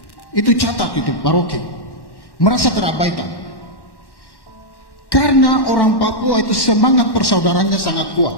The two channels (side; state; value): right; late; 1.1 ms